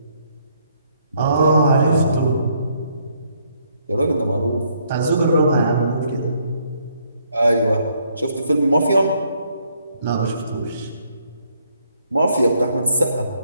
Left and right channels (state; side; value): inverted; both; correlation -0.70